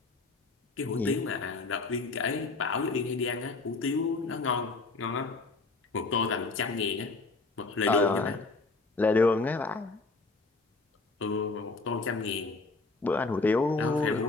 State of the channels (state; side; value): quieter; right; 3.7 dB